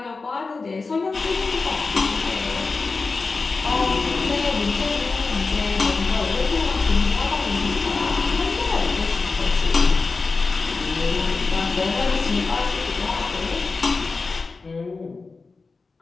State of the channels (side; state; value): right; quieter; 4.1 dB